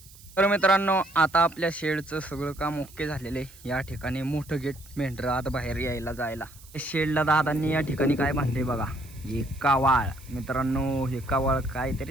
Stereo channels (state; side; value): noise; right; hiss, 22 dB below the sound